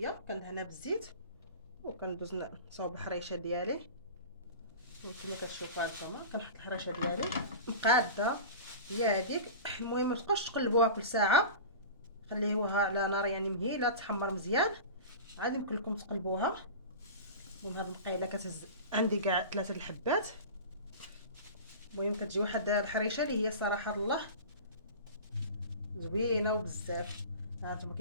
كندهنها بالزيت وكندوز نصاوب الحريشه ديالي. وكما كتشوفوا هانتوما كنحط الحريشه ديالي مقاده هي هذيك. المهم ما تبقاوش تقلبوها كل ساعه، خليوها على نار يعني مهيله تحمر مزيان، عاد يمكن لكم تقلبوها. المهم هاد المقيله كتهز عندي كاع 3 الحبات. المهم كتجي واحد الحريشه اللي هي صراحه الله زوينه وبزاف. هانتوما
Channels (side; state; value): both; inverted; correlation -0.33